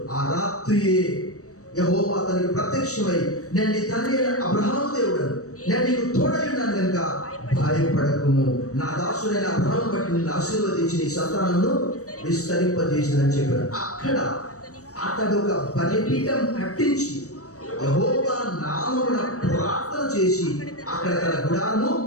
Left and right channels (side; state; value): right; late; 0.65 ms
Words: ఆ రాత్రియే యెహోవా అతనికి ప్రత్యక్షమై, నేను నీ తండ్రి అయిన అబ్రహాము దేవుడను, నేను నీకు తోడై ఉన్నాను కనుక భయపడకుము, నా దాసుడైన అబ్రహామును బట్టి నిన్ను ఆశీర్వదించి నీ సంతానమును విస్తరింపజేసిందని చెప్పాడు. అక్కడ అతడు ఒక బలిపీఠం కట్టించి యెహోవా నామమున ప్రార్థన చేసి అక్కడ తన గుడారము.